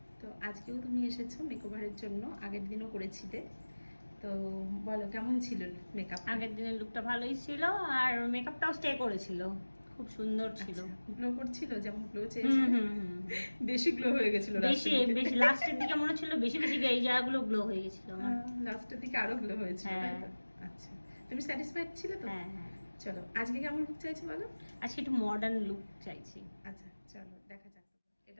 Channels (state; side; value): inverted; both; correlation -1.00